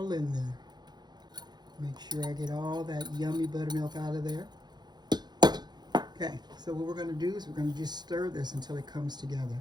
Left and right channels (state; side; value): late; left; 0.21 ms